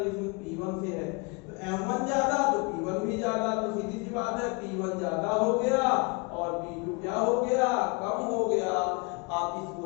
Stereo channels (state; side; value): quieter; right; 31.3 dB